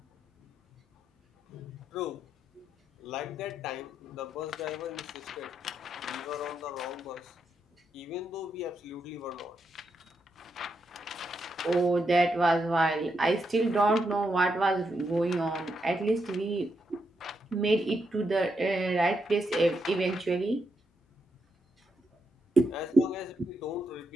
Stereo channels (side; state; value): both; normal; correlation 0.82